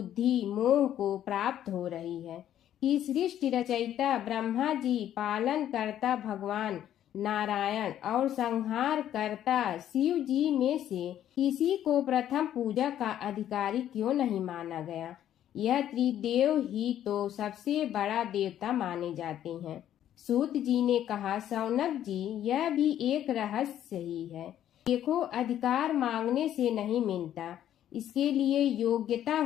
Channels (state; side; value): quieter; right; 11.2 dB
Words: मोह को प्राप्त हो रही है कि सृष्टि रचयिता ब्रह्मा जी, पालन करता भगवान नारायण और संहार करता शिव जी में से किसी को प्रथम पूजा का अधिकारी क्यों नहीं माना गया। यह त्रिदेव ही तो सबसे बड़ा देवता माने जाते हैं। सूत जी ने कहा, शौनक जी, यह भी एक रहस्य ही है। देखो, अधिकार मांगने से नहीं मिलता, इसके लिए योग्यता